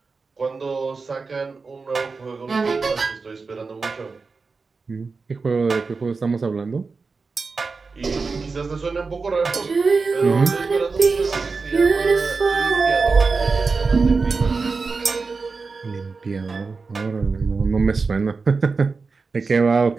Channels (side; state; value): left; quieter; 4.4 dB